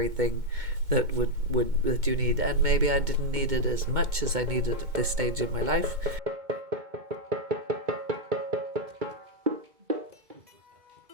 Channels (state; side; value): late; left; 2.2 ms